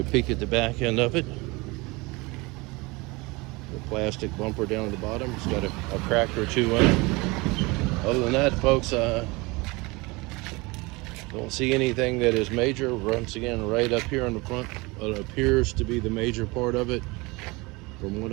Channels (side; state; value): left; quieter; 24.6 dB